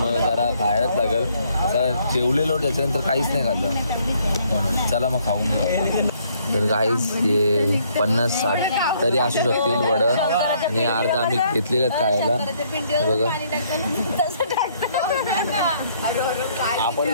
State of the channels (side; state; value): both; inverted; correlation -0.67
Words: जरा खायलाच लागेल. आता जेवलेलो त्याच्यानंतर काहीच नाही खाल्लं म्हणून चला मग खाऊन घेऊ. तर गाईज हे 50-60 तरी असू शकतील वडं आणि अर्धा आम्ही घेतलेलं खायला. बघा आपण